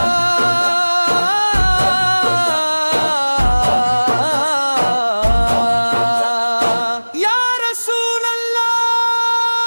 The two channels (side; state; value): both; inverted; correlation -1.00